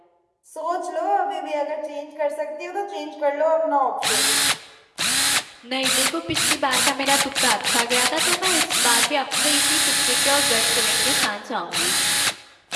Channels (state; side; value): identical; both; correlation 1.00